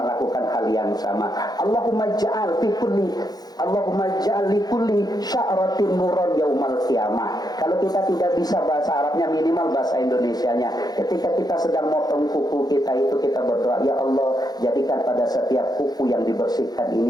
hal yang sama. Allahumma ja'al fi kulli Allahumma ja'al li kulli sya'ratin nuran yaumal qiyamah. Kalau kita tidak bisa bahasa Arabnya, minimal bahasa Indonesianya. Ketika kita sedang motong kuku kita itu, kita berdoa, ya Allah, jadikan pada setiap kuku yang dibersihkan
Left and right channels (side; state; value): right; late; 0.19 ms